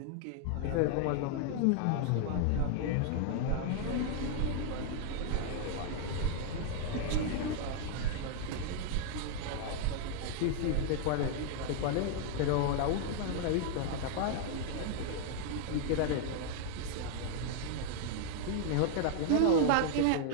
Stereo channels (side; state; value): both; different; correlation 0.00